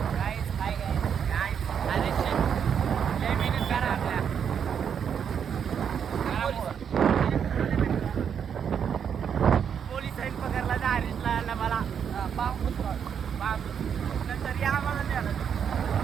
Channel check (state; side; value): quieter; left; 7.7 dB